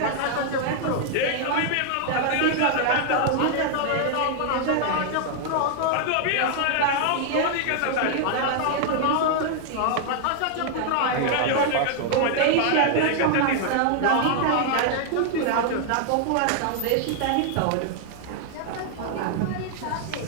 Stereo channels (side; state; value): both; different; correlation 0.00